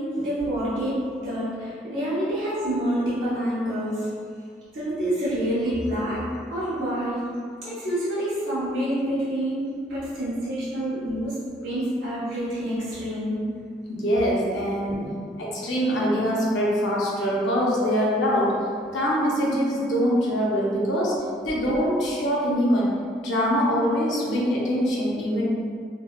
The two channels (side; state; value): both; normal; correlation 0.59